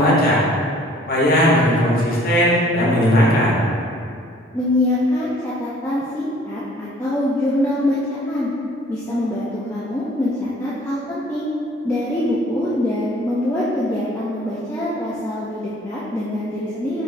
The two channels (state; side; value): normal; both; correlation 0.56